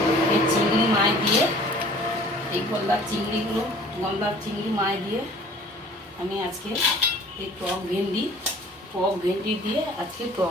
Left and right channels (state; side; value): normal; both; correlation 0.50